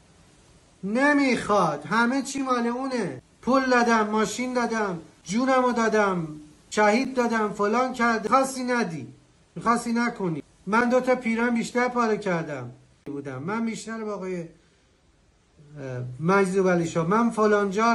نمیخواد. همه چی مال اونه. پول دادم، ماشین دادم، جونمو دادم، شهید دادم، فلان کرد. میخواستی ندی، میخواستی نکنی. من 2 تا پیران بیشتر پاره کردم بودم، من بیشتر با آقای مجذوب علی شاه، من فلان جا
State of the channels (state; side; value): identical; both; correlation 1.00